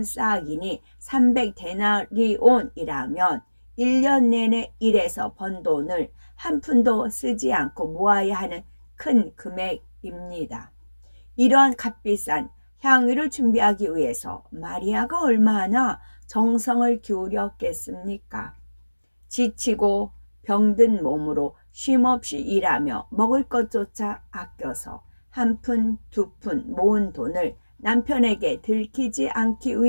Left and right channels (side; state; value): both; inverted; correlation -1.00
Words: 300데나리온이라면 1년 내내 일해서 번 돈을 한 푼도 쓰지 않고 모아야 하는 큰 금액입니다. 이러한 값비싼 향유를 준비하기 위해서 마리아가 얼마나 정성을 기울였겠습니까? 지치고 병든 몸으로 쉼없이 일하며 먹을 것조차 아껴서 한 푼, 두 푼 모은 돈을 남편에게 들키지 않기